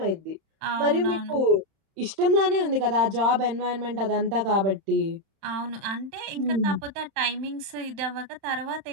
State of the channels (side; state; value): left; late; 31 ms